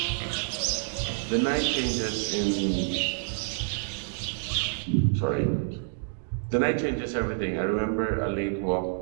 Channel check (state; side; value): silent; left; digital silence